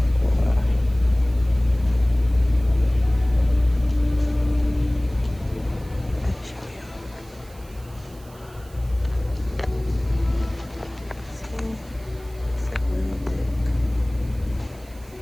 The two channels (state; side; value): noise; right; hiss, 25 dB below the sound